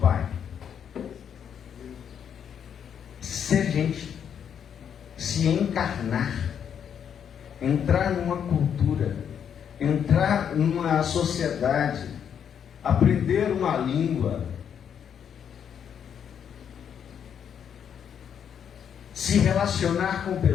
Ser gente, se encarnar, entrar numa cultura, entrar numa sociedade, aprender uma língua, se relacionar com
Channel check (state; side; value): quieter; right; 8.2 dB